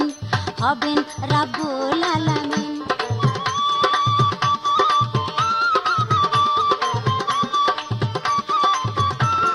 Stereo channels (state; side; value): identical; both; correlation 1.00